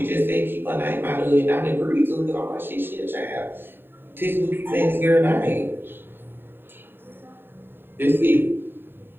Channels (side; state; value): left; late; 0.099 ms